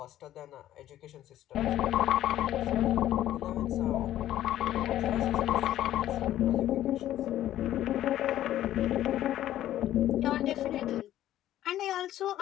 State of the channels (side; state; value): right; quieter; 12.9 dB